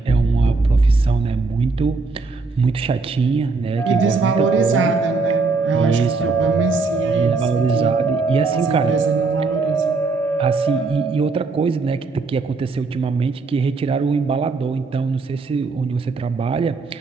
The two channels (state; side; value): quieter; left; 4.0 dB